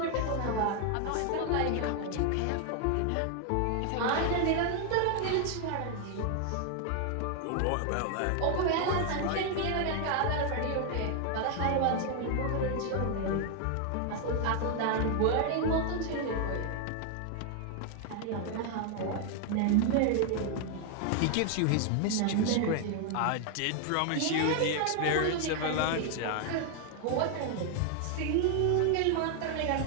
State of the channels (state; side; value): different; both; correlation 0.00